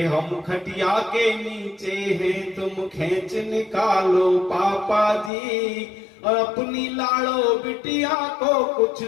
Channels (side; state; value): right; drops out; at 5.3 s